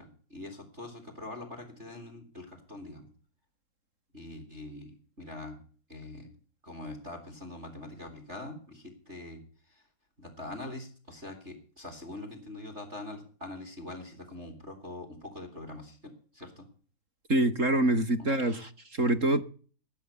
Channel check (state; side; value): late; left; 3.7 ms